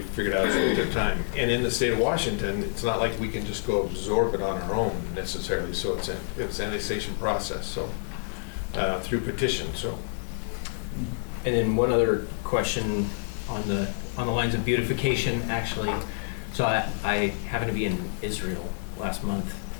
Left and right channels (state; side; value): silent; right; digital silence